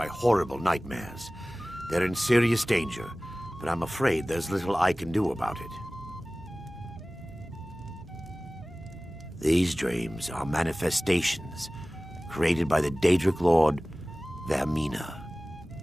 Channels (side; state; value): both; normal; correlation 0.98